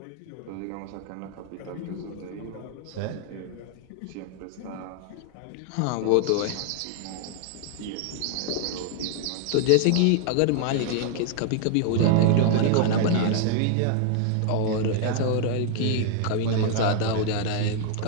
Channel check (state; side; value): different; both; correlation 0.00